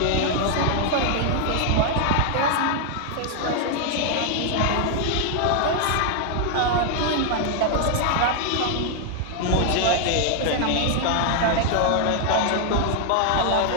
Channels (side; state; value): both; different; correlation 0.00